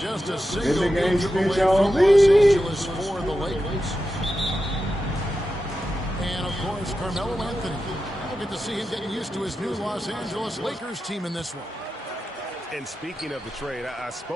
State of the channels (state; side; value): normal; both; correlation 0.90